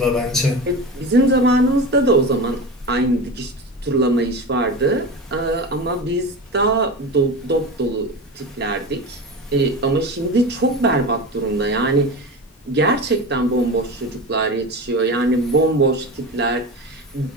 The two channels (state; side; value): normal; both; correlation 0.27